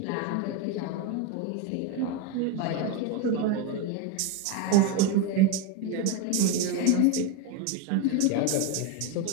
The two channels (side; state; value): both; different; correlation 0.03